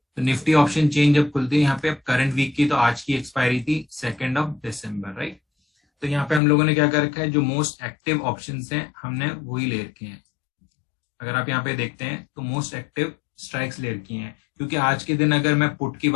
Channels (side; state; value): right; drops out; at 6.4 s